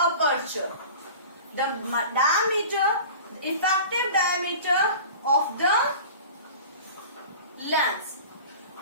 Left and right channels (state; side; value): inverted; both; correlation -0.38